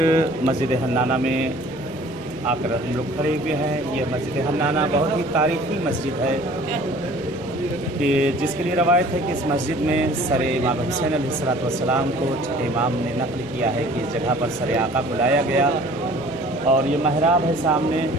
مسجد حنانہ میں آ کر ہم لوگ کھڑے ہوئے ہیں۔ یہ مسجد حنانہ بہت ہی تاریخی مسجد ہے کہ جس کے لیے روایت ہے کہ اس مسجد میں سر امام حسین علیہ السلام کو امام نے نقل کیا ہے کہ اس جگہ پر سر آقا کو لایا گیا، اور یہ محراب ہے سامنے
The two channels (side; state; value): left; noise; rumble, 22 dB below the sound